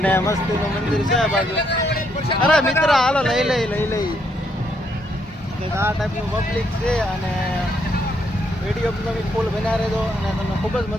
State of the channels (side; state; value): both; normal; correlation 0.74